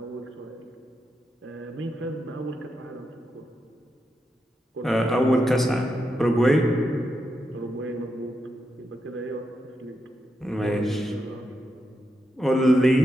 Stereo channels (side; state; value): both; normal; correlation 0.85